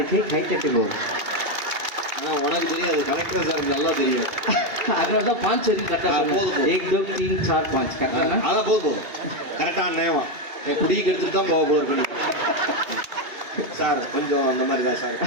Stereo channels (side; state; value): left; late; 2.8 ms